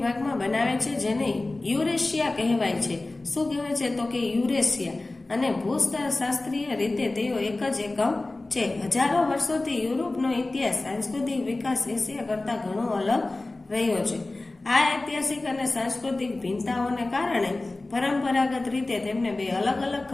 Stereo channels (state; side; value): quieter; right; 3.0 dB